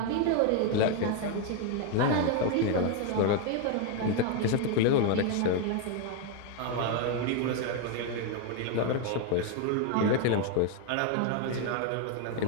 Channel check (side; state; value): both; different; correlation 0.01